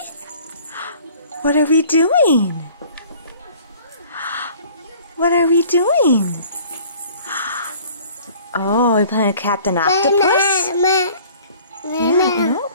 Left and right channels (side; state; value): both; inverted; correlation -0.51